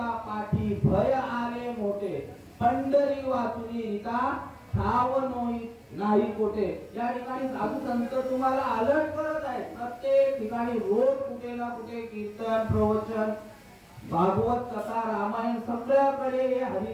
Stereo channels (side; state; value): both; identical; correlation 1.00